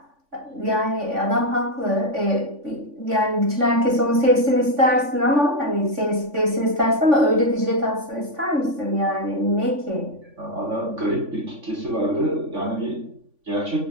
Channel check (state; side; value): late; left; 3.5 ms